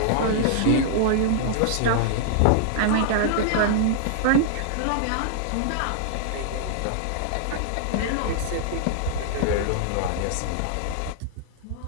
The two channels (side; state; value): both; different; correlation -0.01